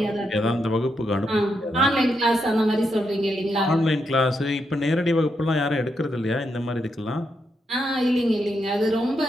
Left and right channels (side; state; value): both; normal; correlation 0.82